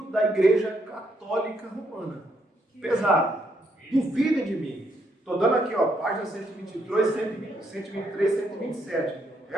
da Igreja Católica Romana. Pesado. Duvidem de mim. Estou dando aqui, ó, página 123, 127.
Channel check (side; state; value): both; normal; correlation 0.75